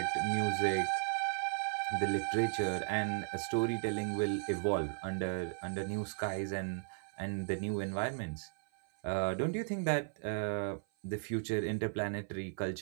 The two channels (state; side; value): silent; left; 54 dB below the other